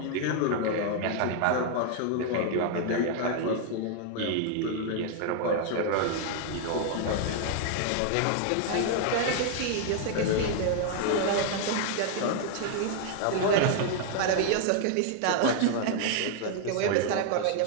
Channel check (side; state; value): both; different; correlation 0.00